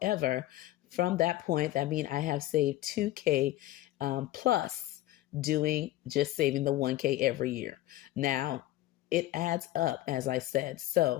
from that point, that means I have saved 2K plus doing just saving the 1K every year. Now, it adds up, as I said.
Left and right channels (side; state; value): right; quieter; 15.6 dB